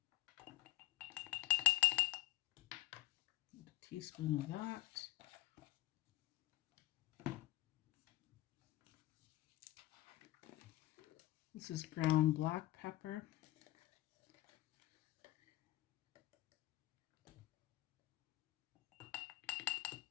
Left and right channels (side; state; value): right; quieter; 16.2 dB